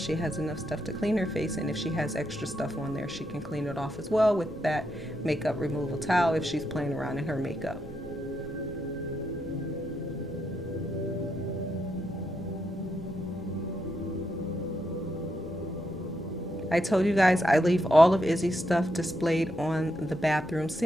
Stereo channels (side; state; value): left; noise; hum, 25 dB below the sound